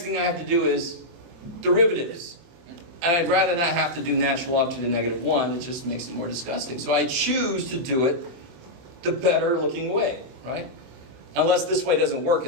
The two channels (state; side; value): late; left; 23 ms